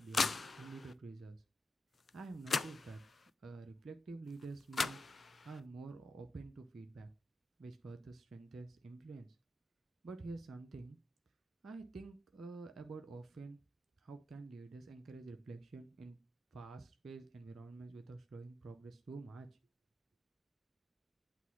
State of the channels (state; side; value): normal; both; correlation 0.88